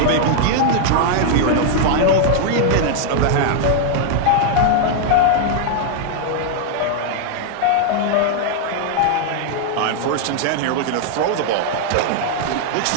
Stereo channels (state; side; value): different; both; correlation 0.00